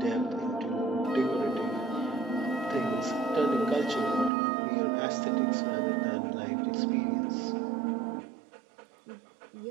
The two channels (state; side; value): drops out; left; at 4.3 s